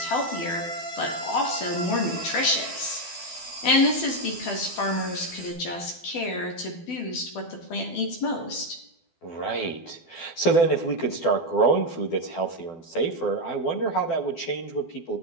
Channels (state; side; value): late; right; 12 ms